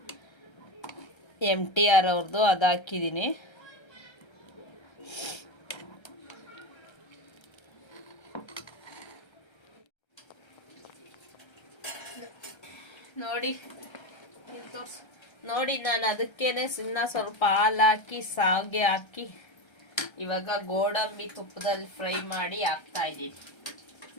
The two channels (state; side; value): late; right; 1.3 ms